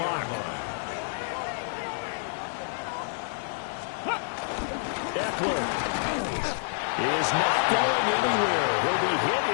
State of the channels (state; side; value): silent; right; 59 dB below the other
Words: Eckler is not going anywhere. He'll be hit